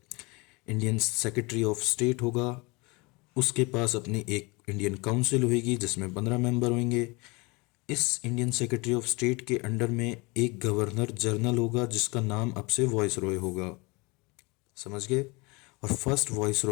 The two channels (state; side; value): quieter; right; 26.7 dB